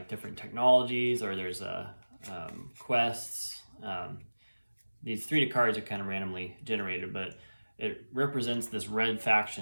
different technologies, or there's quests. These 3 cards are kind of randomly generated, but it represents this red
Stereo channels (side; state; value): both; inverted; correlation -1.00